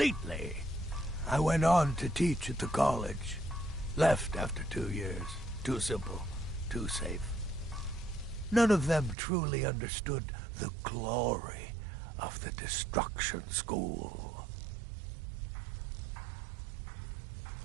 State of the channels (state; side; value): drops out; left; at 9.2 s